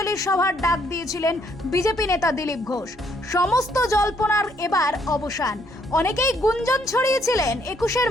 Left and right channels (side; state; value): both; normal; correlation 0.69